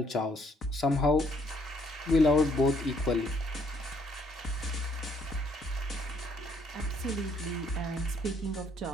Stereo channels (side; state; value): both; normal; correlation 0.67